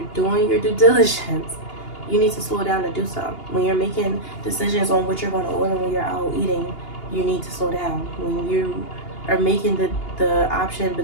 doing your due diligence, you need to slow down to do so. When you're making decisions on what you're going to order when you're out eating, you need to slow down. When you are making the option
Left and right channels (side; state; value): right; late; 2.8 ms